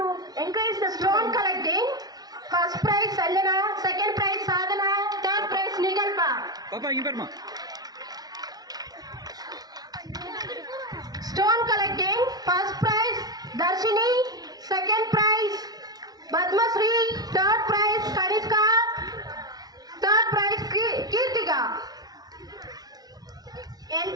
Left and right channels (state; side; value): late; left; 0.19 ms